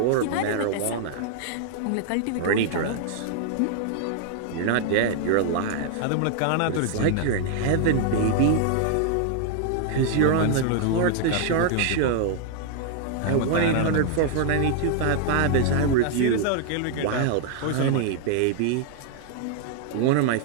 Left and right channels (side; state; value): both; different; correlation 0.00